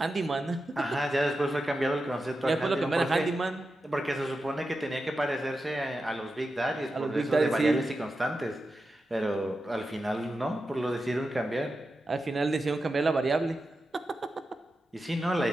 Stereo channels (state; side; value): normal; both; correlation 0.90